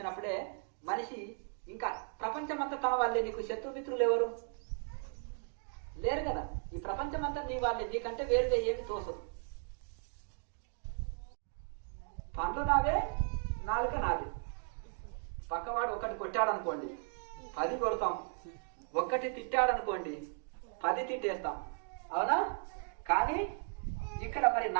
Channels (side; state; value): left; silent; 54 dB below the other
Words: మనిషి ఇంకా ప్రపంచం అంతా తన వాళ్ళే. నీకు శత్రుమిత్రులు ఎవరు లేరు కదా, ఈ ప్రపంచం అంతా నీ వాళ్ళే, నీకంటే వేరుగా ఏమి తోసదు. పండ్లు నావే, నాలుక నాది. పక్కవాడు ఒకటి కొట్టాడనుకోండి 10 కొడతాం, ఒక్కటి తిట్టాడనుకోండి 10 తిట్టేస్తాం, అవునా? కానీ ఇక్కడ మరి